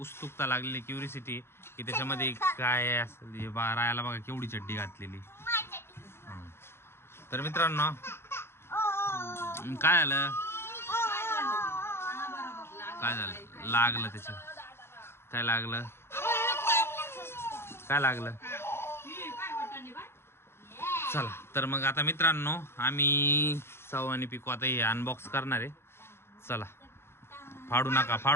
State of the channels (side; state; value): right; late; 0.12 ms